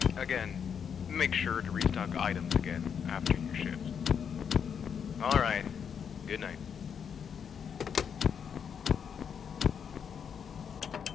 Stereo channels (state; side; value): quieter; right; 7.4 dB